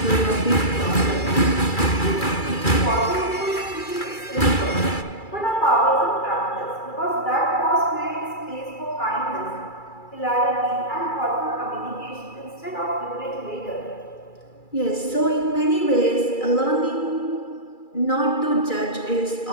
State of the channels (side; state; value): right; late; 2.3 ms